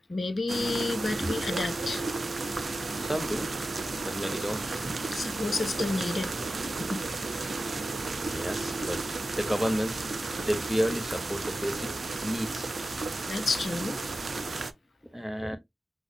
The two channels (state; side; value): normal; both; correlation 0.93